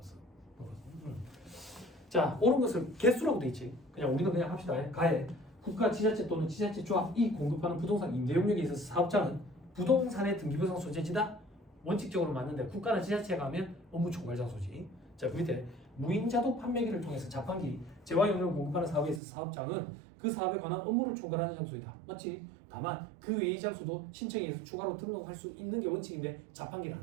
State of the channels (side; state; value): left; drops out; at 19.2 s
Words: 자, 옳은 것을 개수라고 돼 있지. 그냥 우리는 그냥 합시다. 가해. 국가, 지자체 또는 지자체 조합이 공급하는 부동산 임대 영역에 있어서 사업자는 부동산의 등기부상 소재지다. 원칙적으로 맞는데 국가나 지자체가 하면 업무 총괄 장소지. 자, 그 밑에 무인자동 판매기를 통해서 자판기, 재화 용료를 공급하는 사업에 있어서 사업장은 그 사업에 관한 업무를 총괄하는 장소이다. 맞지? 다만 그 외의 장소도 신청에 의해서 추가로 등록할 수 있는 게 원칙인데 자판기는